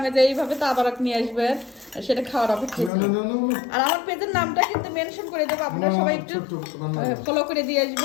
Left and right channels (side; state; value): right; drops out; at 2.9 s